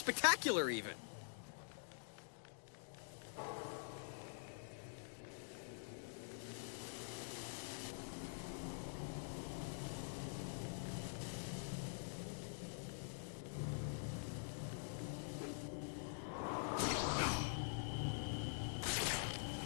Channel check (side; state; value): right; silent; digital silence